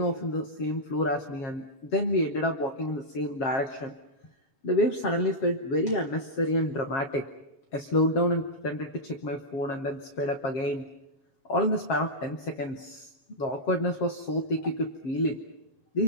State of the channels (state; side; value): late; right; 7.4 ms